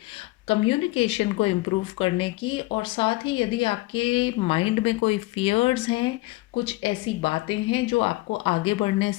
कम्युनिकेशन को इम्प्रूव करने की, और साथ ही यदि आपके माइंड में कोई फियर्स हैं, कुछ ऐसी बातें हैं जो आपको आगे बढ़ने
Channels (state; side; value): quieter; right; 20.5 dB